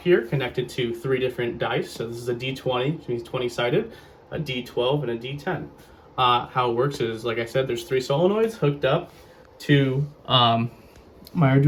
connected to 3 different dice. So this is a D20, which means 20 sided, a D12, and a D10. How it works is, like I said, there's 3 solenoids hooked up to my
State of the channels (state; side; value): identical; both; correlation 1.00